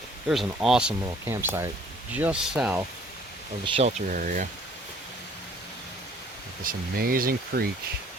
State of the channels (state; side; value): normal; both; correlation 0.57